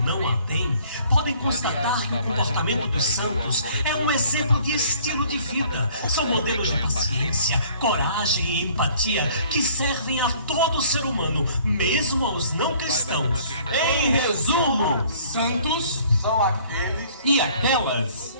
não a têm, podem constatar que o comportamento dos santos é um exemplo de estilo de vida. São modelos de paciência, coragem e empatia que servem a todo ser humano, mesmo aos não cristãos. Em resumo, Santos são aqueles e aquelas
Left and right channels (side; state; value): both; inverted; correlation -0.56